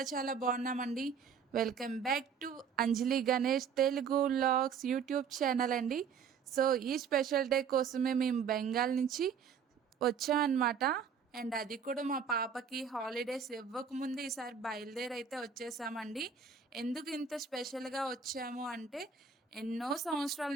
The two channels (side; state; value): left; quieter; 6.6 dB